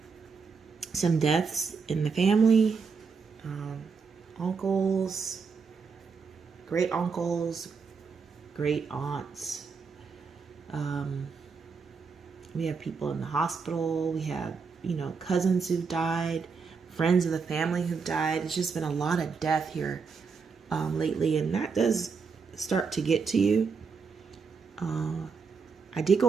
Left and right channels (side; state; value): left; quieter; 5.3 dB